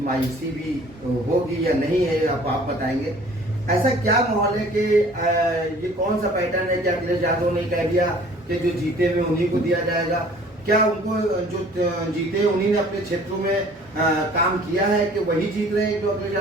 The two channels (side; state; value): both; normal; correlation 0.52